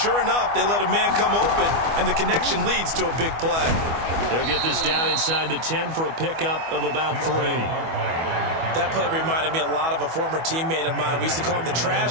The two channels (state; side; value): late; left; 25 ms